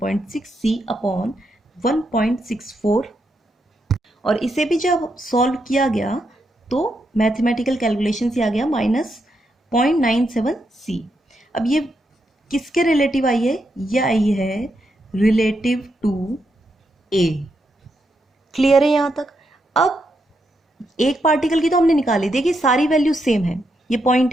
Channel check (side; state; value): both; normal; correlation 0.82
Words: अपॉन 1.64, और इसे भी जब सॉल्व किया गया तो मैथमेटिकल कैलकुलेशन से आ गया -0.97c। अब ये किसके रिलेटिव आई है, ये आई है रिलेटिव टू a। क्लियर है यहाँ तक? अब एक पार्टिकल की तो हमने निकाली, देखिए सारी वैल्यू सेम है, ये